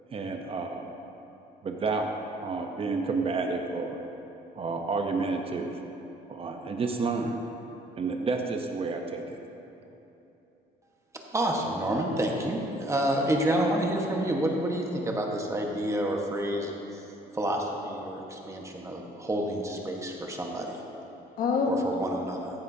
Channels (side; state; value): both; normal; correlation 0.60